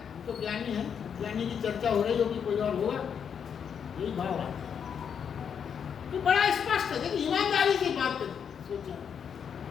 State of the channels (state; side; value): quieter; right; 7.4 dB